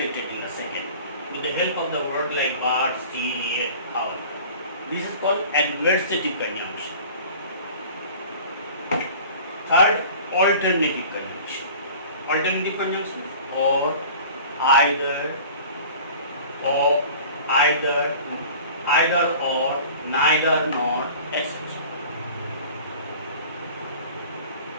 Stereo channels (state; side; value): inverted; both; correlation -0.43